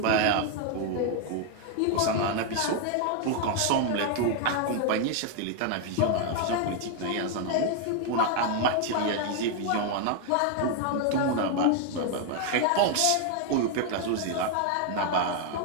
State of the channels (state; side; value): different; both; correlation 0.00